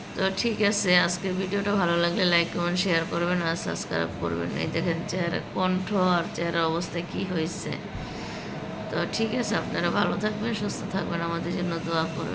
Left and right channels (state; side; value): identical; both; correlation 1.00